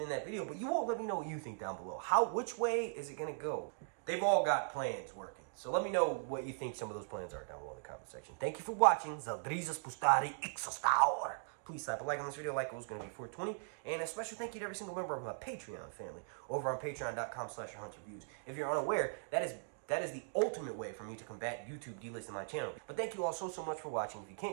in that video, but you all let me know what you think down below. Which way is it going to go? They've all got plans working. So let me know what you think some of those plans are down below in the comment section. Thank you for watching. Zaldrizas Pustari Ixostaur. Please slap a like on this video. Like goal is going to be 420. And a special thank you to every single member of my Patreon family over on patreon.com/HunterViews. If you're unaware, that is the ultimate way for me to combat YouTube delisting my channel. But thank you all so much for watching. If you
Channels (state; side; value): silent; left; digital silence